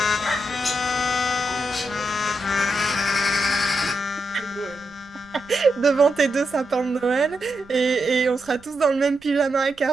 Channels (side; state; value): right; noise; rumble, 27 dB below the sound